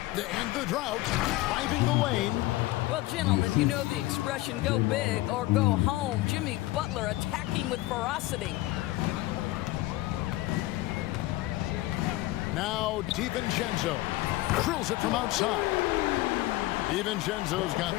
To end the drought. Driving the lane. Well, gentlemen, you know the expression, go big or go home. Jimmy Butler attacking with ferocity. Now DiVincenzo drills it from outside. DiVincenzo's got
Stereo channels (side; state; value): right; quieter; 18.0 dB